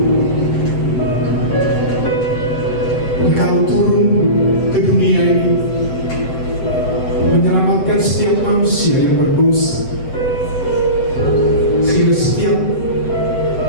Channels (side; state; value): right; late; 7.8 ms